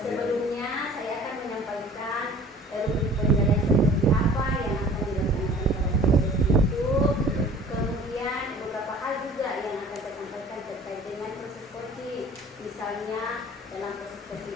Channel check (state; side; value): normal; both; correlation 0.47